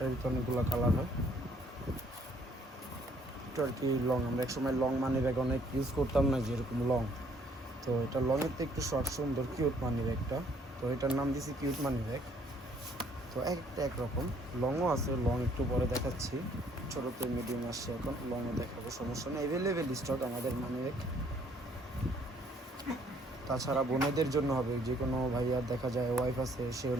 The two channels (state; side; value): normal; both; correlation 0.63